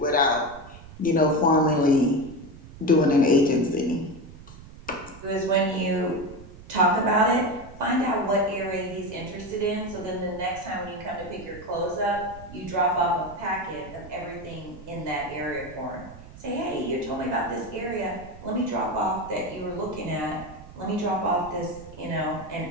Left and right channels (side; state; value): right; noise; rumble, 17 dB below the sound